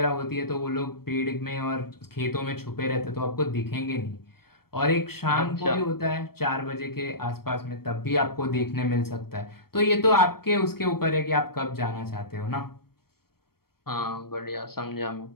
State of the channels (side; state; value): right; late; 0.94 ms